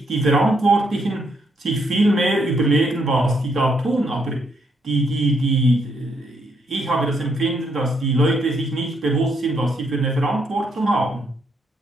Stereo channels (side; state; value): both; normal; correlation 0.74